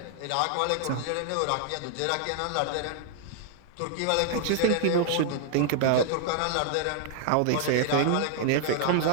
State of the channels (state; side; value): different; both; correlation 0.00